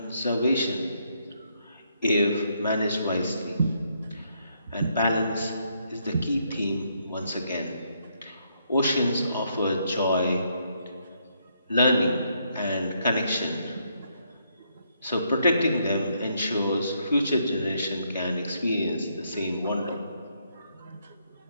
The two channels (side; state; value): both; inverted; correlation -0.74